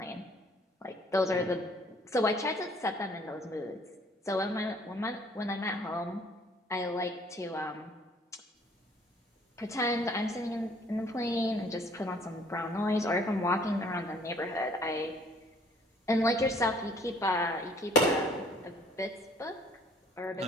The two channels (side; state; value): both; normal; correlation 0.59